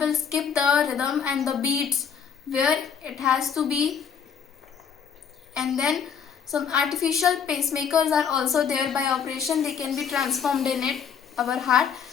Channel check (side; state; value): right; quieter; 7.2 dB